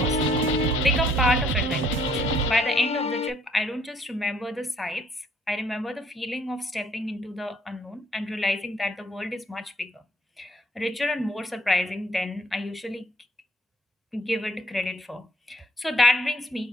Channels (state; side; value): normal; both; correlation 0.64